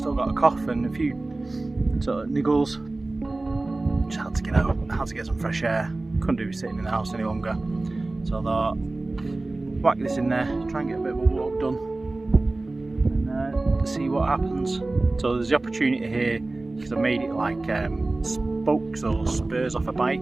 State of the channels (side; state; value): left; quieter; 3.1 dB